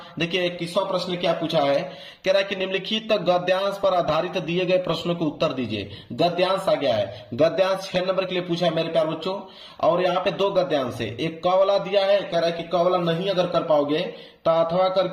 देखिए 21वां प्रश्न क्या पूछा है? कह रहा है कि निम्नलिखित गद्यांश पर आधारित दिए गए प्रश्नों को उत्तर दीजिए। गद्यांश आ गया है, गद्यांश 6 नंबर के लिए पूछा है मेरे प्यारे बच्चों। और यहाँ पे 2 गद्यांश है, एक क वाला दिया है, कह रहा है कि क वाला नहीं अगर कर पाओगे तो अथवा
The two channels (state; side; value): identical; both; correlation 1.00